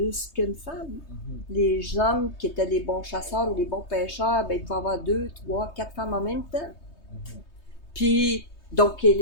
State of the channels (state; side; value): late; right; 3.2 ms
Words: qu'une femme. Les hommes qui étaient des bons chasseurs ou des bons pêcheurs, ben, ils pouvaient avoir 2, 3, 4 femmes en même temps. Puis, donc,